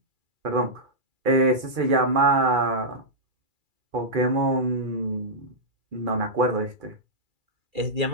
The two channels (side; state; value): left; late; 2.3 ms